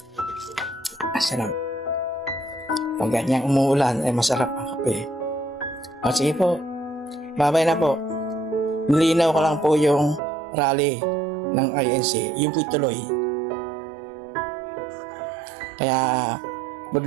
Sarap. Pag ganyang umuulan ay masarap ang kape. Sige po. Bye-bye na po. Nilinaw ko lang po yung rally ng INC. Yung po'y tuloy. Kaya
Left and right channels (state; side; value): drops out; left; at 10.2 s